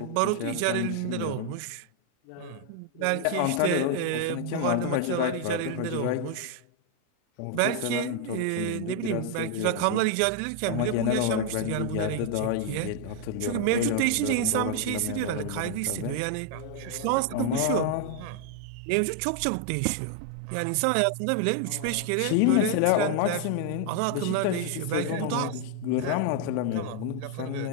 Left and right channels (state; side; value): different; both; correlation 0.00